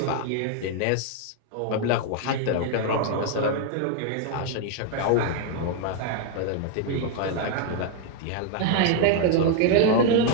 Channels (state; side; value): different; both; correlation 0.00